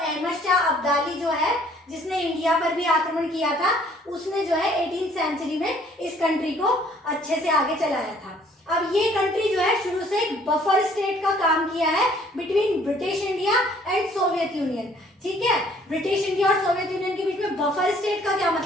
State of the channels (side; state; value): both; normal; correlation 0.60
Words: शाह अब्दाली जो है, जिसने इंडिया पर भी आक्रमण किया था, उसने जो है 18th सेंचुरी में इस कंट्री को अच्छे से आगे चलाया था। अब ये कंट्री जो है शुरू से एक बफर स्टेट का काम किया है between British India and Soviet union. ठीक है, ब्रिटिश इंडिया और सोवियत यूनियन के बीच में बफर स्टेट का क्या